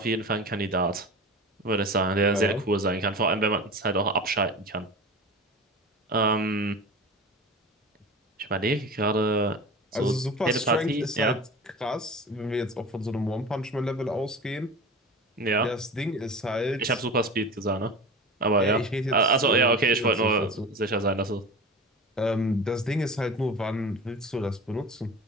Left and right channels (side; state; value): both; normal; correlation 0.32